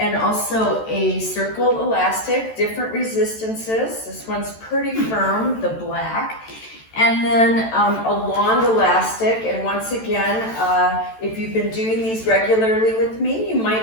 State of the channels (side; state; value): right; late; 14 ms